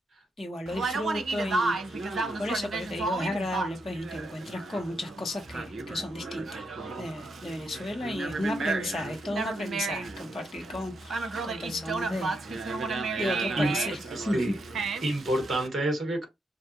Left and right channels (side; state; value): both; normal; correlation 0.80